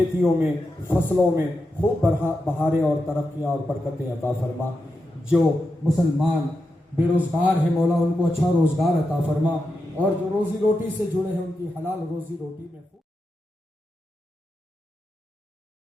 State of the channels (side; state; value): both; normal; correlation 0.88